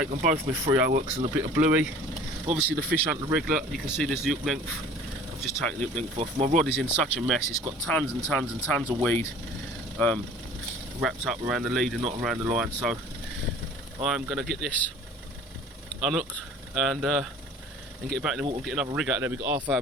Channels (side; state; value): both; normal; correlation 0.46